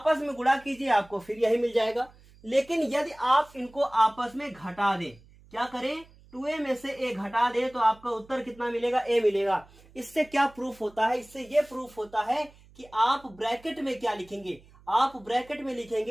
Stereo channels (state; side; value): noise; right; hum, 26 dB below the sound